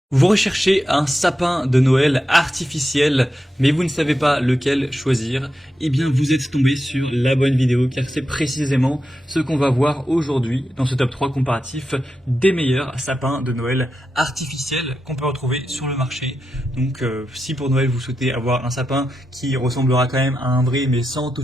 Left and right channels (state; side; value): normal; both; correlation 0.88